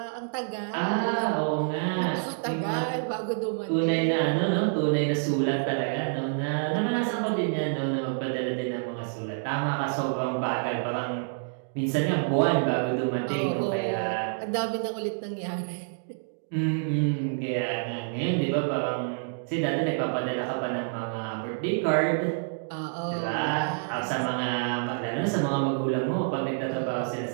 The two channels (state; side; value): silent; left; digital silence